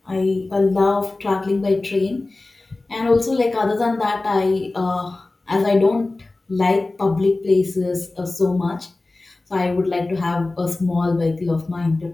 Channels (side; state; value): right; quieter; 3.1 dB